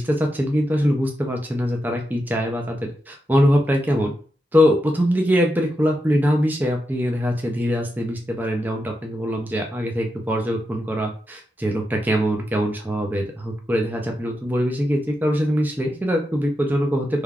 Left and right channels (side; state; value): both; normal; correlation 0.86